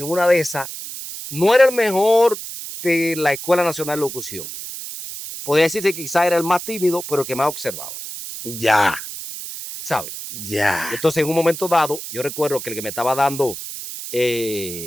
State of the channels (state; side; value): noise; right; hiss, 9 dB below the sound